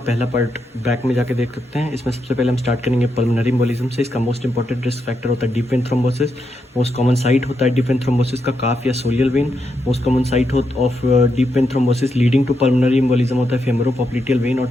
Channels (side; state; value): both; normal; correlation 0.82